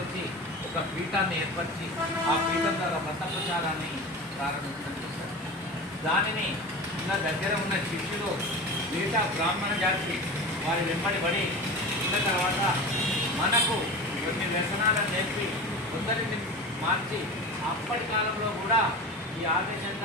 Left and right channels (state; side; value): normal; both; correlation 0.30